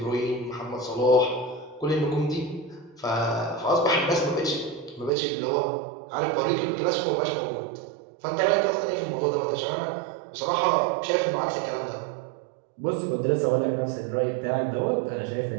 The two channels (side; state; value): left; drops out; at 5.1 s